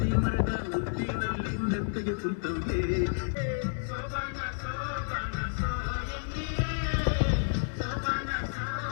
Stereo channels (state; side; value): silent; right; 57 dB below the other